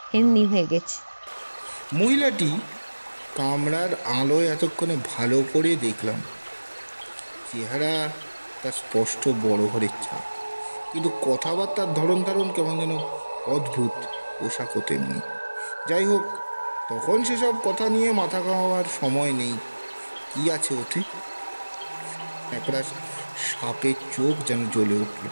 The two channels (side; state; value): both; inverted; correlation -1.00